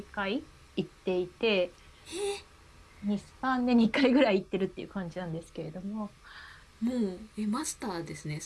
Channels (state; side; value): identical; both; correlation 1.00